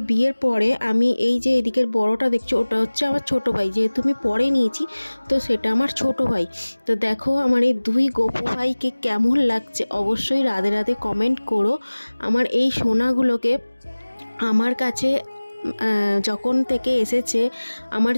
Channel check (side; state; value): both; inverted; correlation -1.00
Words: বিয়ের পরে আমি এই যে এদিকের বড়টা দেখছো, ওটা হচ্ছে আমার ছোট ভাই, যেহেতু আমি পরে নিয়েছি তো সেটা আমার ছোট ভাই। তো দেখো আমার এই দুই গপু ভাইকে কেমন লাগছে অবশ্যই রাধে রাধে কমেন্ট করো। আমার এই সোনাগুলোকে আমার কাছে যখন থেকে এসেছে, আমার